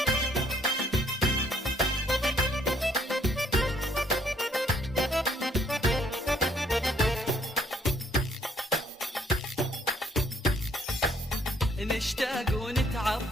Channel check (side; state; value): both; normal; correlation 0.65